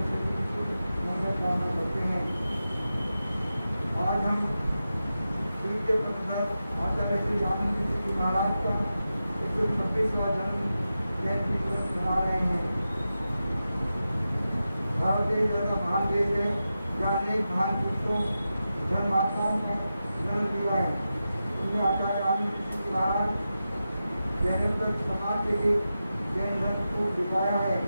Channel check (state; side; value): inverted; both; correlation -0.91